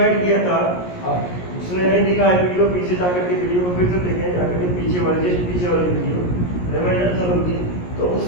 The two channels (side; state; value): right; late; 17 ms